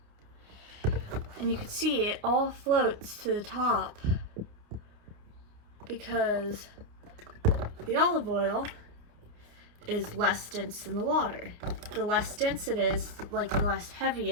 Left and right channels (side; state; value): left; late; 29 ms